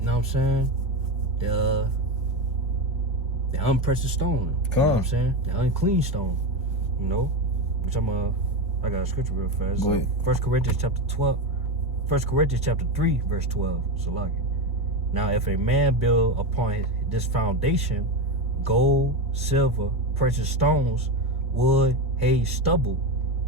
what I'm saying? The unprecious stone. You know what I'm saying? The unclean stone. You know? Which I got a scripture real fast. Go ahead. 1 Corinthians chapter 3, verse 12. Salaki. Now, if a man build upon this foundation, gold, silver, precious stones, wood, hay, stubble,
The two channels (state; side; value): normal; both; correlation 0.16